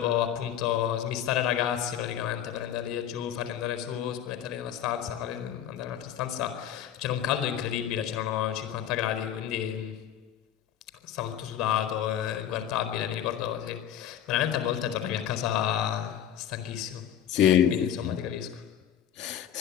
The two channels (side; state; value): right; quieter; 10.1 dB